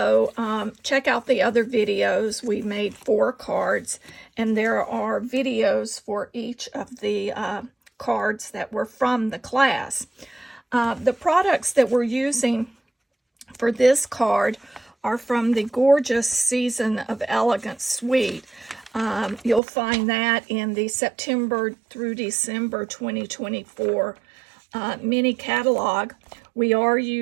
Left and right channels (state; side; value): drops out; left; at 19.6 s